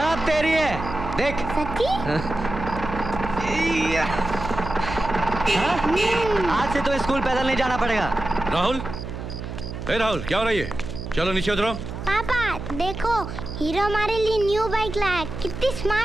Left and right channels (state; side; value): noise; right; hum, 8 dB below the sound